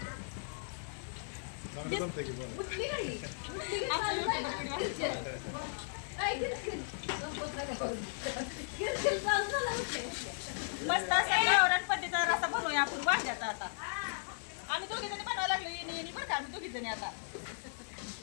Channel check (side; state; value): right; silent; 54 dB below the other